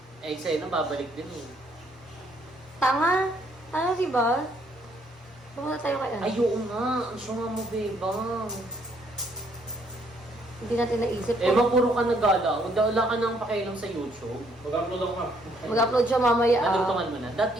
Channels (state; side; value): normal; both; correlation 0.68